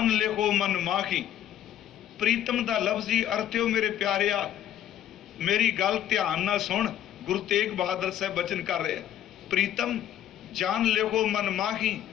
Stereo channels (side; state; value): right; quieter; 11.1 dB